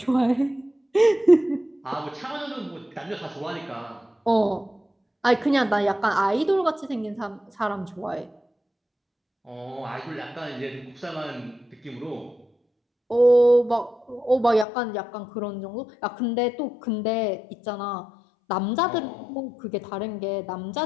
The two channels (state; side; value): drops out; right; at 14.7 s